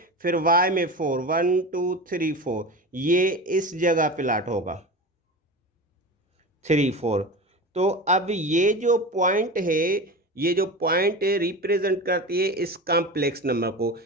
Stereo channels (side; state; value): both; normal; correlation 0.28